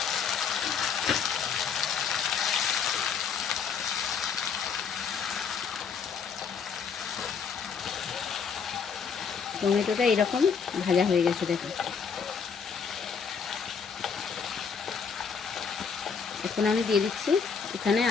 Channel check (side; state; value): right; quieter; 6.2 dB